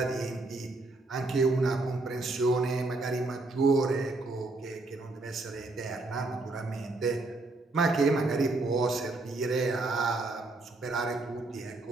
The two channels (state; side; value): quieter; left; 3.1 dB